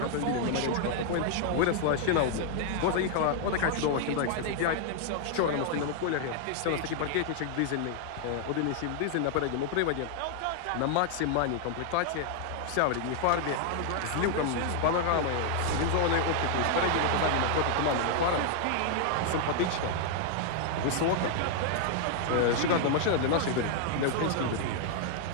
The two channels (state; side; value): different; both; correlation 0.00